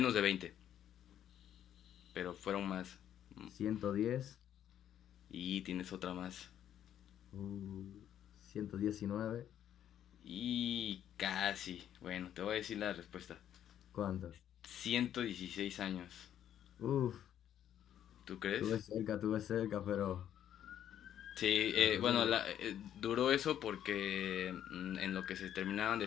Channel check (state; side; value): quieter; right; 10.4 dB